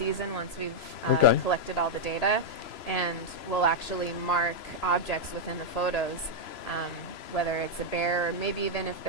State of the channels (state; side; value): late; right; 3.0 ms